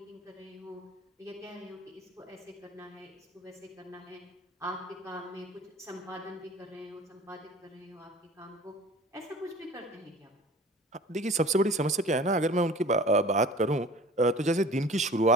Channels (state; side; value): normal; both; correlation 0.43